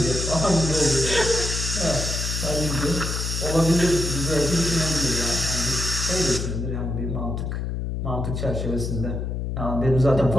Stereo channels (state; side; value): noise; left; hum, 3 dB below the sound